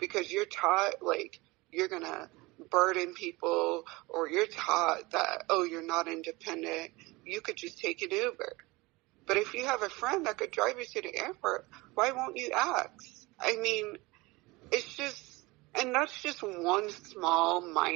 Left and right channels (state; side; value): quieter; left; 22.8 dB